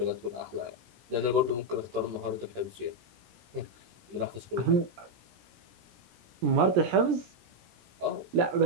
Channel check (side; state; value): left; late; 17 ms